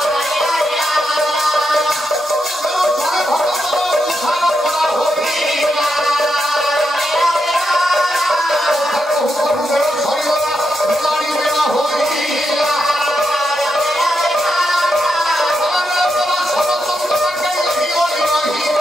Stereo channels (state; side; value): normal; both; correlation 0.84